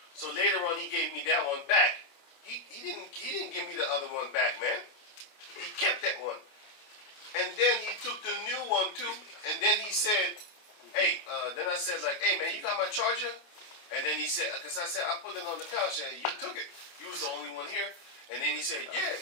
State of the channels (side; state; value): right; late; 29 ms